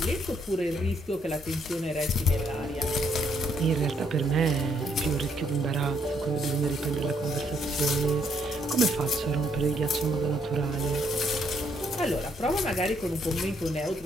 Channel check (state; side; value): normal; both; correlation 0.71